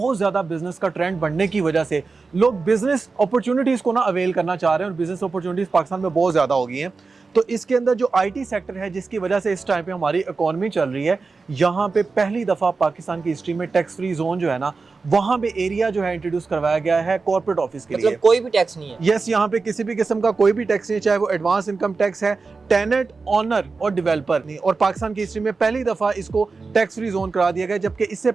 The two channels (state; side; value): quieter; left; 4.3 dB